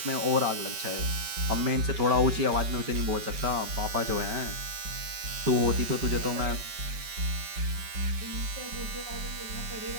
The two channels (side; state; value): left; late; 5.2 ms